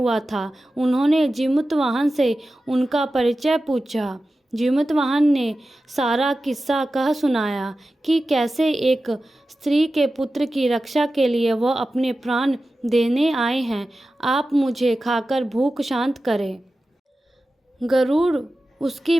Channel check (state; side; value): normal; both; correlation 0.94